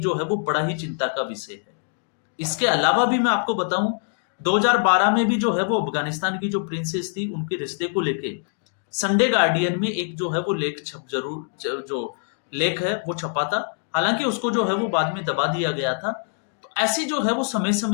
जो है वो बड़ा ही चिंता का विषय है। इसके अलावा भी मैं आपको बताऊं, 2012 में भी जो है वो अफगानिस्तान की जो प्रिंसेस थी उनके रिश्ते को लेके संडे गार्डियन में एक जो है वो लेख जो लेख है वो छपा था। हालांकि उसको जो है वो बाद में दबा दिया गया था। तो ऐसी जो है वो समय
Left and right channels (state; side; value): silent; right; 63 dB below the other